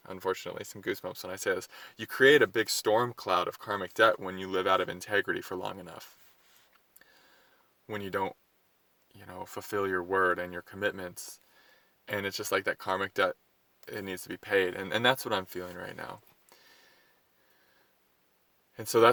unfortunately, some goosebumps when I say this. You create a big storm cloud of karmic debt when you live out of integrity for long enough. When you don't, fulfill your word and your commitments. And it's just like that karmic debt, it needs to be paid. And that's what I'm feeling right now. And so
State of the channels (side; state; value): both; identical; correlation 1.00